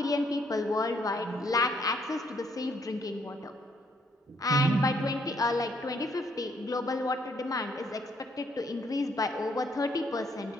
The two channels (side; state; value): both; normal; correlation 0.69